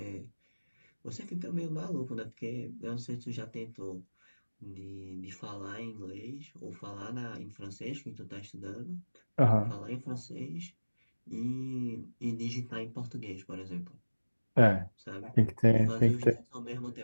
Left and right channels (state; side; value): inverted; both; correlation -1.00